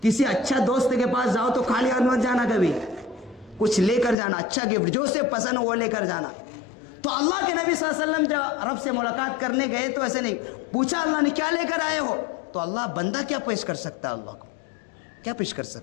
کسی اچھا دوست کے پاس جاؤ تو خالی ہاتھ مت جانا، کبھی کچھ لے کر جانا، اچھا گفٹ جو اسے پسند ہو وہ لے کر جانا. تو اللہ کے نبی صلی اللہ علیہ وسلم جب رب سے ملاقات کرنے گئے تو ایسے نہیں پوچھا اللہ نے کیا لے کر آئے ہو. تو اللہ بندہ کیا پیش کر سکتا ہے؟ اللہ کو کیا پیش کر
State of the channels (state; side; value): drops out; right; at 4.2 s